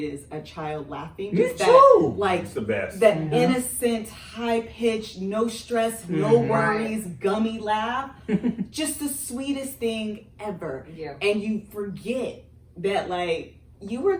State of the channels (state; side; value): identical; both; correlation 1.00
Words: a child laughing. Me Just too. like It's the best. that innocent, high-pitched, no stress, no worries, gummy laugh. Just the sweetest thing ever. Yeah. And you forget that like you were